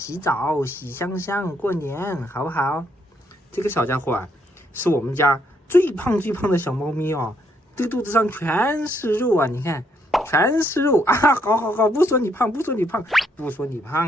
澡洗香香，过年好不好？这个小家伙啊，是我们家最胖的小猫咪哦，这个肚子上全是肉啊，你看，全是肉啊！好，不说你胖，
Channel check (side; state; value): both; normal; correlation 0.73